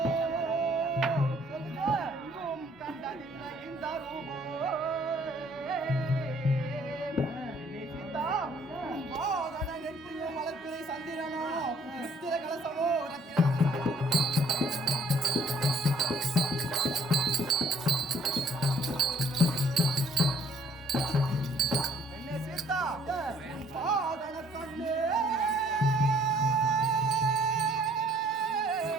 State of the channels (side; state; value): both; normal; correlation 0.61